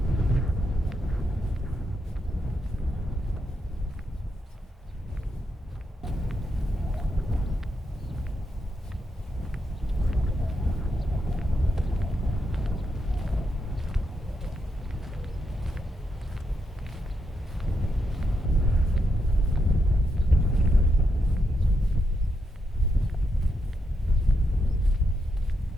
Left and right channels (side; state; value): both; normal; correlation 0.82